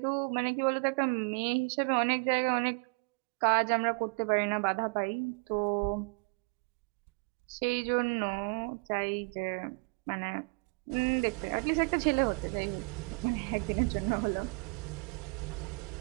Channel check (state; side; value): quieter; left; 34.9 dB